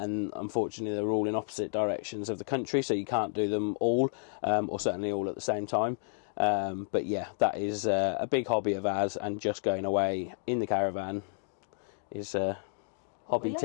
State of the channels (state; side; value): silent; right; digital silence